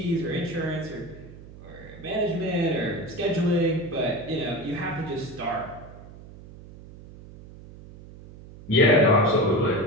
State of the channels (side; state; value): right; noise; hum, 18 dB below the sound